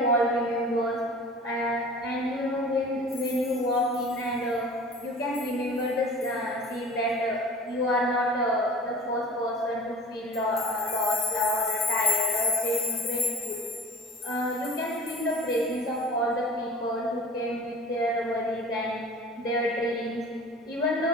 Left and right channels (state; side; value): normal; both; correlation 0.42